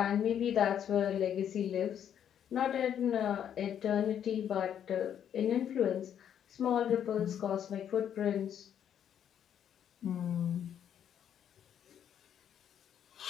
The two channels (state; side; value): quieter; right; 9.3 dB